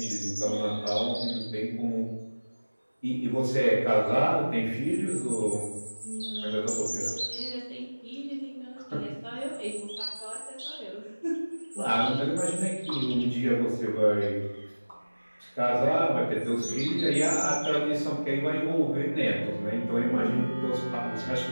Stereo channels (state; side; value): inverted; both; correlation -1.00